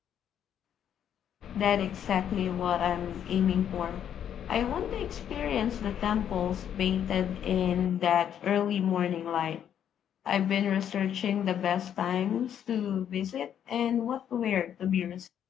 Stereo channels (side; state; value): right; quieter; 9.4 dB